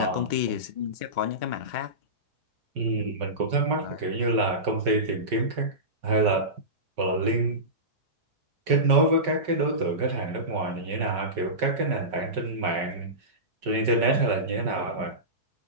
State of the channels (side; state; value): left; late; 5.3 ms